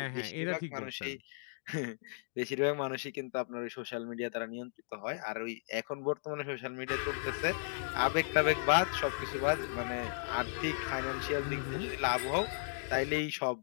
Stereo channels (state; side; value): silent; right; digital silence